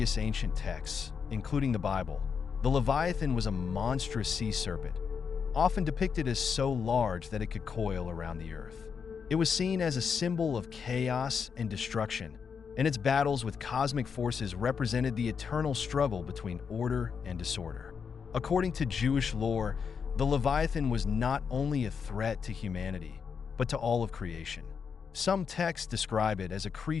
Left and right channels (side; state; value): right; quieter; 6.3 dB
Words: ancient texts, including the Bible, the Leviathan was a monstrous sea serpent, often depicted as so large that it could coil around the earth. It was seen as a symbol of chaos and destruction, and its battles with cosmic forces represented the eternal struggle between order and disorder. According to Jewish lore, the Leviathan was not only a threat to humanity, but to all of creation. Some texts describe it as a